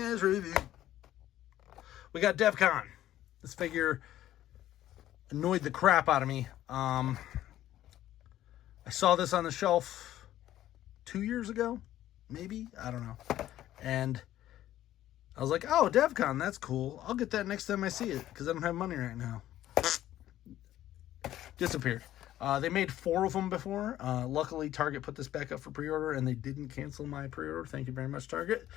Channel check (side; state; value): right; quieter; 13.2 dB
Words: review. We got Devcon. This figure annoyed the crap out of me. I saw this on the shelf 2 years ago, maybe? I don't know. And I was like, oh, Devcon, that's cool. I'll get that next time I see it because I don't have money right now. Disappeared. They made 4 of them before. Luckily, Target put this back up for pre-order, and they didn't cancel my pre-order. Thank you very much, Target.